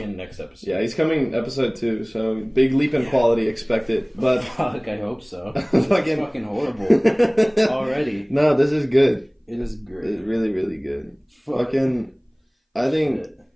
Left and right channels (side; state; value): both; identical; correlation 1.00